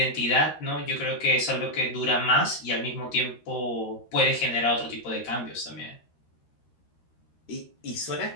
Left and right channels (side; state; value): right; late; 13 ms